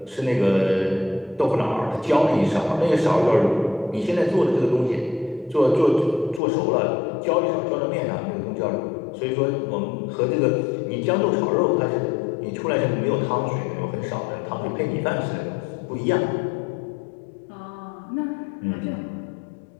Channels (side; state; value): right; drops out; at 6.4 s